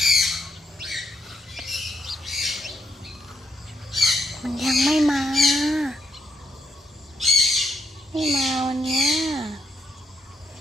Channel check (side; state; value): both; normal; correlation 0.78